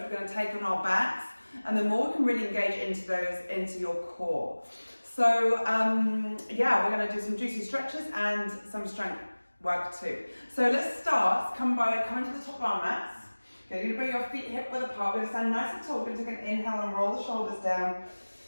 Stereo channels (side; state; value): both; inverted; correlation -1.00